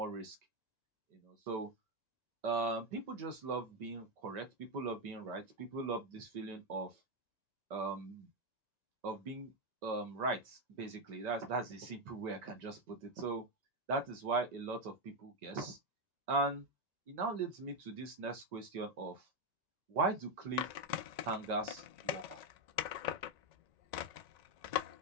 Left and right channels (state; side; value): late; left; 1.9 ms